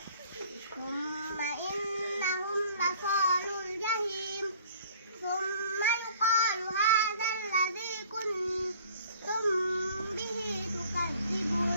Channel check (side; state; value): both; inverted; correlation -0.52